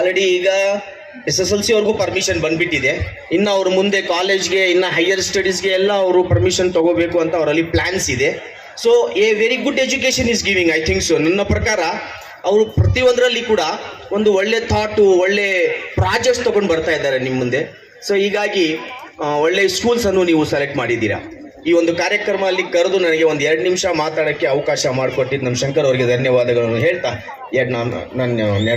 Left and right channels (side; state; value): both; identical; correlation 1.00